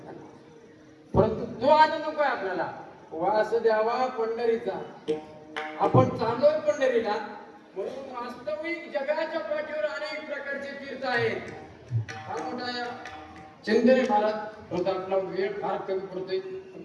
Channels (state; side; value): identical; both; correlation 1.00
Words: परंतु तो आनंद नको आहे आपल्याला वास द्यावा पंढरीचा. आपण चाललोय पंढरीला म्हणून वास्तविक जगाच्या पाठीवर अनेक प्रकारचे तीर्थ आहेत. फार मोठा चिंतने महाराज होता. आपला वेळ फार कमी पडतोय